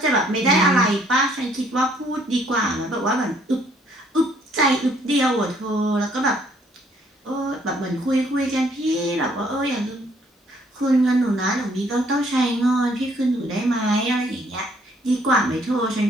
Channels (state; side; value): normal; both; correlation 0.65